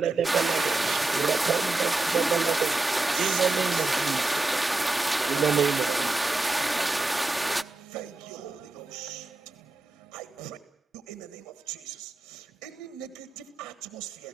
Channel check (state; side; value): quieter; left; 3.1 dB